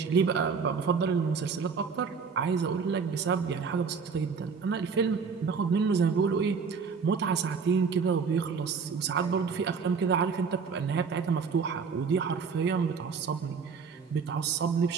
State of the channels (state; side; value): quieter; left; 5.6 dB